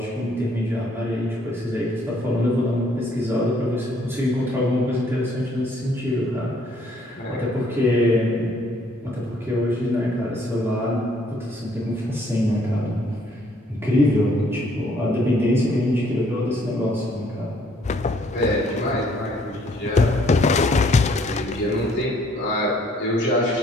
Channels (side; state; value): both; normal; correlation 0.64